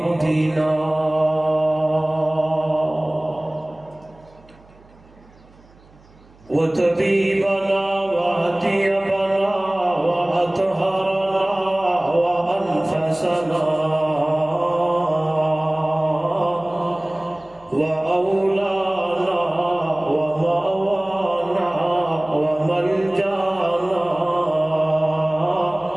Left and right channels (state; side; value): noise; right; hum, 27 dB below the sound